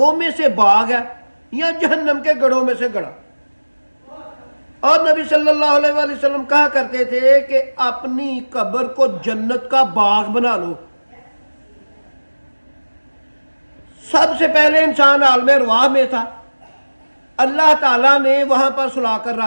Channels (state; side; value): inverted; both; correlation -1.00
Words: میں سے باغ ہے یا جہنم کے گڑھوں میں سے گڑھا؟ اور نبی صلی اللہ علیہ وآلہ وسلم کہا کرتے تھے کہ اپنی قبر کو جنت کا باغ بنا لو۔ سب سے پہلے انسان عالم ارواح میں تھا، اللہ تعالیٰ نے وہاں پر سلا کر